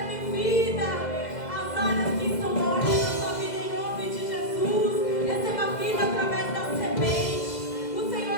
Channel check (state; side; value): late; right; 2.0 ms